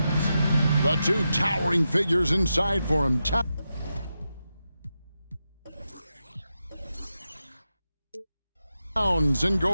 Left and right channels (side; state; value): both; inverted; correlation -0.89